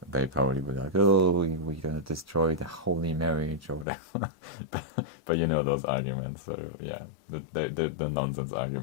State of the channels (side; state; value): right; drops out; at 3.9 s